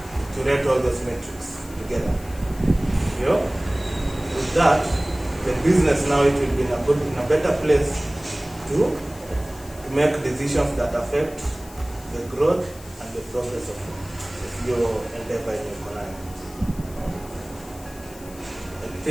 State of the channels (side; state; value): left; noise; hiss, 20 dB below the sound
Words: to rate all those metrics together. With that, the business now, it will be in a better place to make decisions that affect the growth and the progress of your endeavor in your career. I